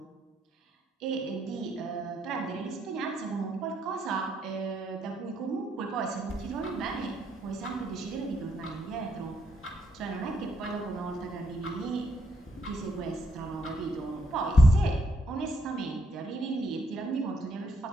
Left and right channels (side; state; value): both; normal; correlation 0.74